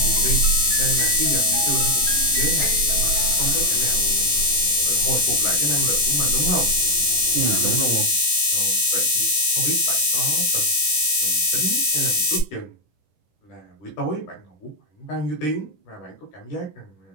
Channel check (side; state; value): right; late; 10 ms